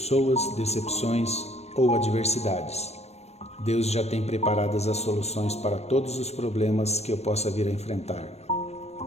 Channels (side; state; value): right; late; 0.31 ms